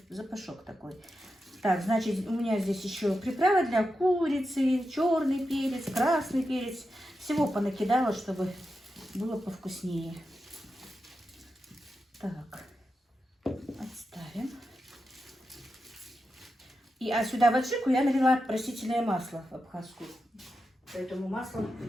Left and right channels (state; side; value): normal; both; correlation 0.89